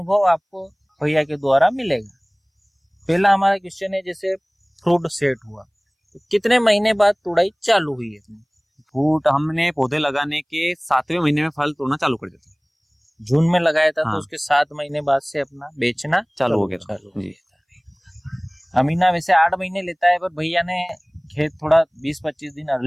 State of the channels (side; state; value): both; identical; correlation 1.00